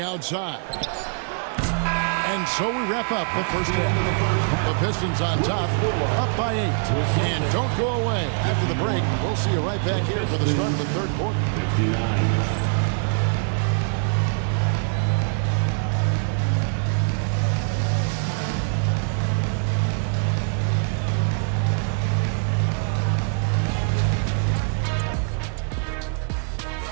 And so we wrap up the first half. The Pistons on top, up by 8. And don't go away. After the break, we'll see you right back here for the start of the third quarter. 59.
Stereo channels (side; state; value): left; silent; 63 dB below the other